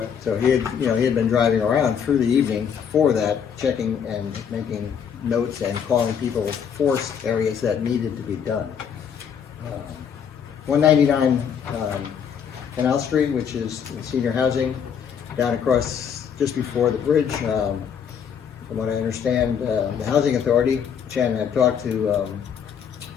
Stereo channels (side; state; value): right; quieter; 7.6 dB